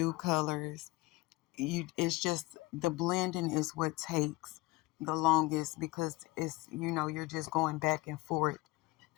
colors, it's just the blending is what takes the longest, because it's, you're just going back and forth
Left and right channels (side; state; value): right; quieter; 21.0 dB